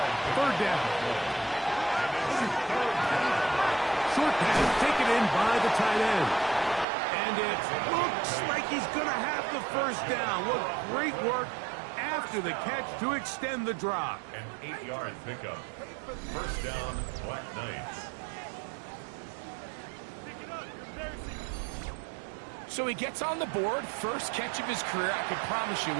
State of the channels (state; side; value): drops out; left; at 6.9 s